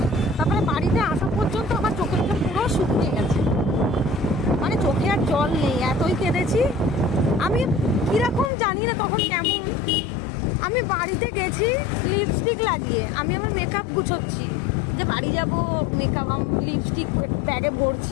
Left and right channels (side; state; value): right; drops out; at 8.5 s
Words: তারপরে বাড়িতে আসা পর্যন্ত আমার চোখে পুরো শুকিয়ে গেছে, মানে চোখে আর জল নেই, এতই কেঁদেছি আমি। কিরকম জানি না তখন কেমন, আমি বাড়িতে গেছি লিপস্টিক লাগিয়ে, আমি আমার মেকআপ গুছোচ্ছি, যে বাড়ি যাবো, মেকআপ লিপস্টিক ব্যাগে